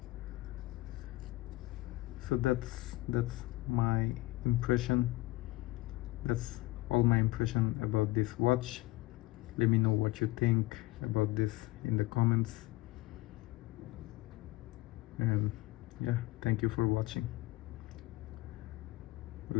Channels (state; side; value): quieter; right; 19.0 dB